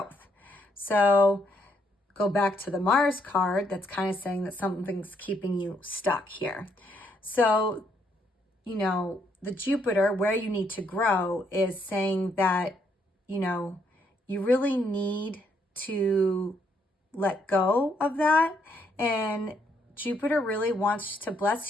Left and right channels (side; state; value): both; normal; correlation 0.73